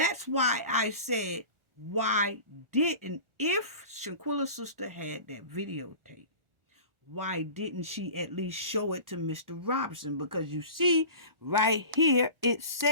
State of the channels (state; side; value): late; left; 1.4 ms